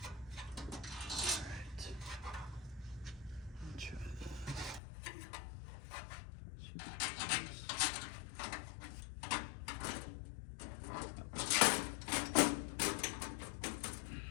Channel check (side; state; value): right; drops out; at 4.8 s